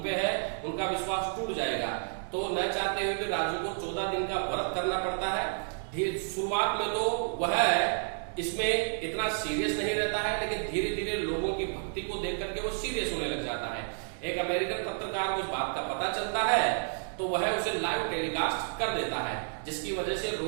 पे है, उनका विश्वास टूट जाएगा। तो न चाहते हुए भी राजू को 14 दिन का व्रत करना पड़ता है। शुरुआत में तो वह इसमें इतना सीरियस नहीं रहता है, लेकिन धीरे धीरे लोगों की भक्ति को देख करके वो सीरियस होने लग जाता है। एक अमेरिकन पत्रकार को इस बात का पता चलता है तो वह उसे लाइव टेलीकास्ट कर देता है, जिसकी वजह से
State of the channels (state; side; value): silent; left; digital silence